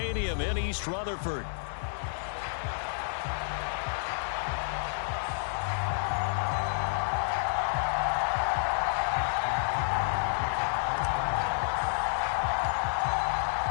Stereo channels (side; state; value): right; silent; 58 dB below the other